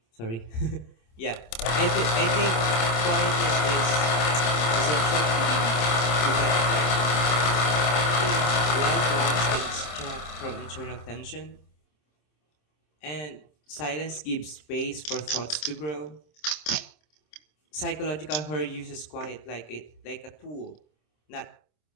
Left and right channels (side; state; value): right; late; 26 ms